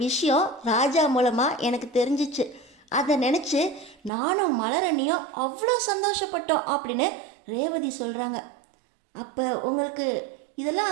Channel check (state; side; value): drops out; left; at 4.1 s